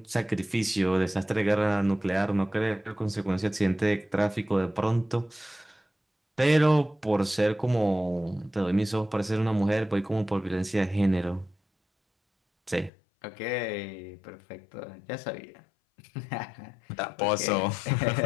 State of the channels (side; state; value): right; drops out; at 12.9 s